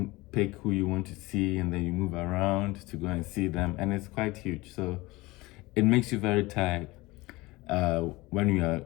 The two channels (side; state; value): right; quieter; 21.4 dB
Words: pick who you want to see, and then you move around to go and see them, and it's quite huge. So it makes you very tired when you are